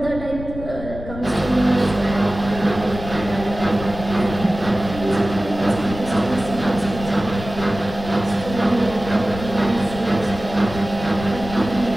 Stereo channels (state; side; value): noise; left; rumble, 11 dB below the sound